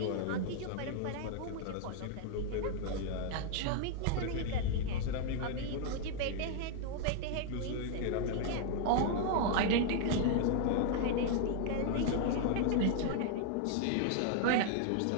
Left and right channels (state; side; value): different; both; correlation 0.00